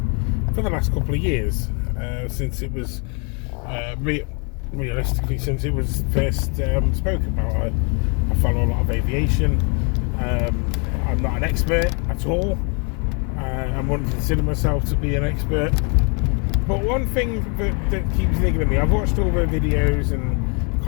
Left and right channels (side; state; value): right; quieter; 35.0 dB